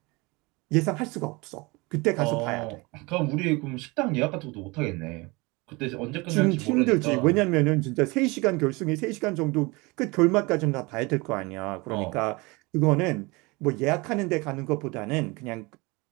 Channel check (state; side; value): quieter; left; 25.3 dB